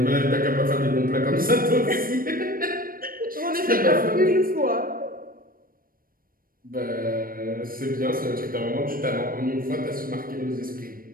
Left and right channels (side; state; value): left; late; 0.41 ms